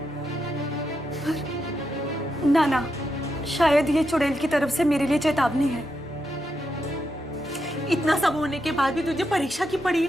ना शायद ये चुड़ैल की तरफ से मेरे लिए चेतावनी है। इतना सब होने के बाद भी तुझे परीक्षा की पड़ी है।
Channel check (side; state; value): both; normal; correlation 0.84